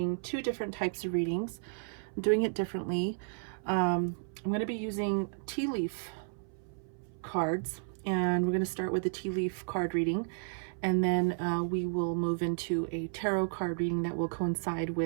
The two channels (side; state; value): left; silent; 56 dB below the other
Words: two different types of readings. I'm doing it differently. I'm going to be using tea leaf cards, and we're going to start with the tea leaf card reading, and then we will move into a tarot card reading that will coincide